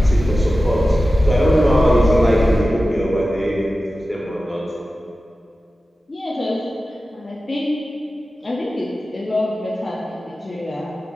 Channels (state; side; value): normal; both; correlation 0.94